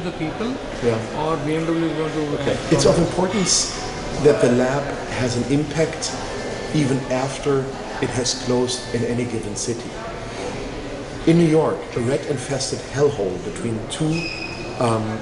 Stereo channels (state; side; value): identical; both; correlation 1.00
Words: the people, Yeah. or BMW is going to? Okay. It's of importance that the lab has an impact even after it has closed in any given city. In New York, a rat-infested hellhole between two